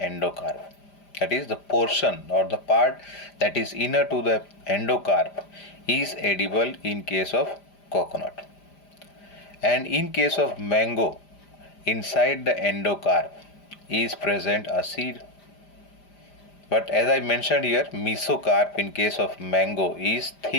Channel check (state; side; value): late; right; 5.0 ms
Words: That is, the portion or the part that is inner to the endocarp is edible in case of coconut. And in case of mango, inside the endocarp is present a seed. But as I mentioned here, mesocarp in case of mango is